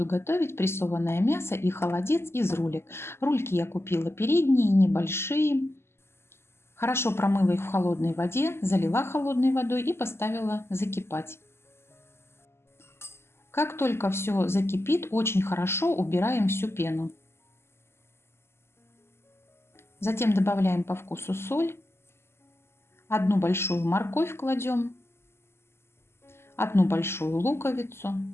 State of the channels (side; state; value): right; late; 0.12 ms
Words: готовить прессованное мясо и холодец из рулек. Рульки я купила передние, небольшие. Хорошо промыла их в холодной воде, залила холодной водой и поставила закипать. Как только все закипит, очень хорошо убираем всю пену. Затем добавляем по вкусу соль. Одну большую морковь кладем. Одну большую луковицу.